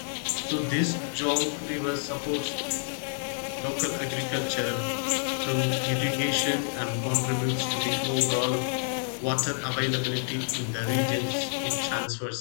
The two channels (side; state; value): right; silent; 59 dB below the other